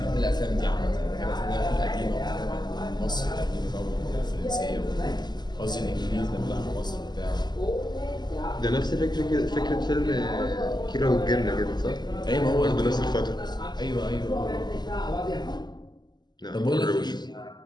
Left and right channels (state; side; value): late; right; 0.21 ms